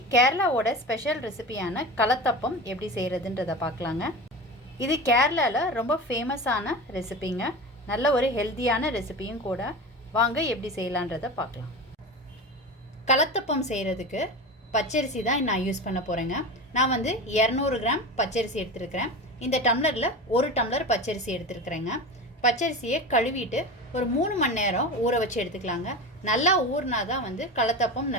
கேரளாவோட special ரெசிபியான கலத்தப்பம் எப்படி செய்கிறதுன்றதை பார்க்கலாங்க. இது கேரளாவில் ரொம்ப ஃபேமஸான ரெசிபிங்க. நல்ல ஒரு ஹெல்த்தியான ரெசிபியும் கூட. வாங்க எப்படி செய்யலான்றதை பார்க்கலாம். கலத்தப்பம் செய்கிறதுக்கு பச்சரிசி தான் நான் யூஸ் பண்ண போகிறேங்க. நான் 200 கிராம் பச்சரிசி எடுத்துருக்கிறேன். இந்த டம்ளரில் 1 டம்ளர் பச்சரிசி எடுத்துருக்கிறேங்க. பச்சரிசியை கழுவிட்டு ஒரு 3 மணி நேரம் ஊற வச்சு எடுத்துக்கலாங்க. நல்லா ஊறினா தான் கலத்தப்பம்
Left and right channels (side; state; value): both; normal; correlation 0.27